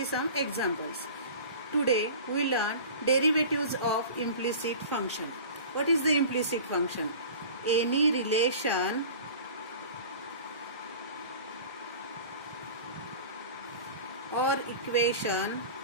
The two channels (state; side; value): inverted; both; correlation -0.38